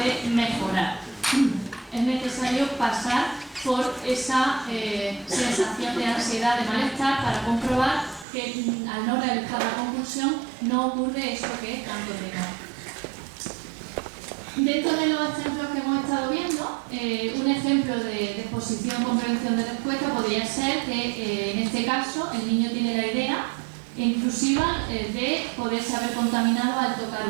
mejorar. Es necesario pasar por esa sensación de ansiedad, de malestar, para comprobar que al no realizar la compulsión no ocurre eso que es tanto temor. Dentro de los ejemplos que hemos estado viendo, un ejemplo de exposición con prevención de respuesta podría ser que en este caso el niño tiene la idea intrusiva de poderse haber contaminado al tocar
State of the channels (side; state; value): left; drops out; at 8.2 s